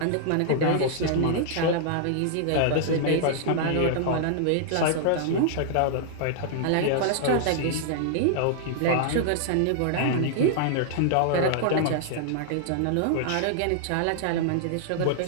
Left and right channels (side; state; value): both; different; correlation -0.01